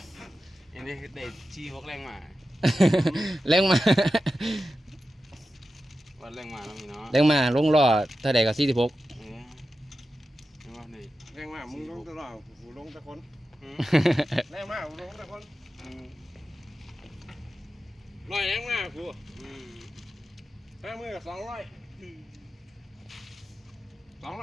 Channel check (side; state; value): both; normal; correlation 0.92